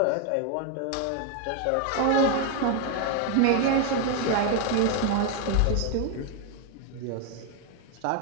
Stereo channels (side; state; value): both; different; correlation 0.01